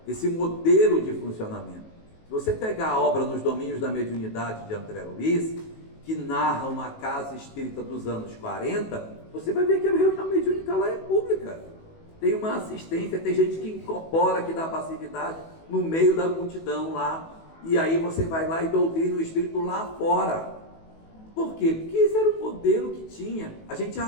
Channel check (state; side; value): late; right; 18 ms